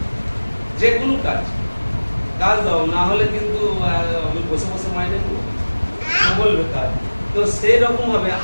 যে কোনো কাজ দাও, না হলে কিন্তু আমি বসে বসে মাইনে নেবো, বলবে কাজ। তো সেই রকম ভাবে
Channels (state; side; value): inverted; both; correlation -1.00